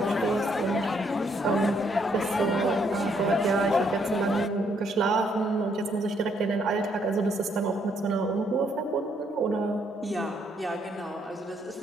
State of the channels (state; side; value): normal; both; correlation 0.71